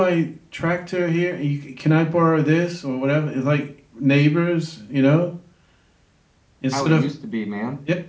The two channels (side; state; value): both; identical; correlation 1.00